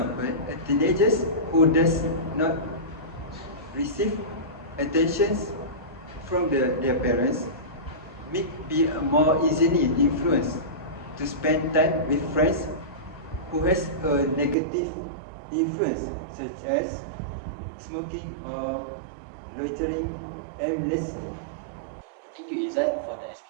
a teenager who does not receive attention from their parents may be more easily influenced to spend time with friends who has a negative influence, such as smoking or loitering aimlessly. Thank you, Izzat, for the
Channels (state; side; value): drops out; left; at 14.6 s